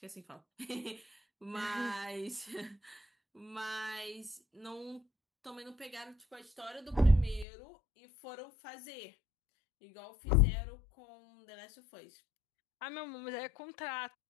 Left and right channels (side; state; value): right; drops out; at 7.5 s